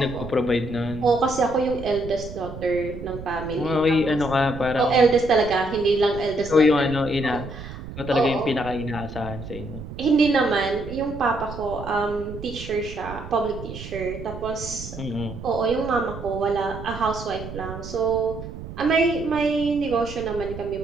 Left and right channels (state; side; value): noise; right; rumble, 11 dB below the sound